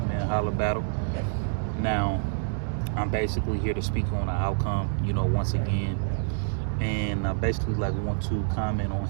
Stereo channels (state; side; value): silent; left; digital silence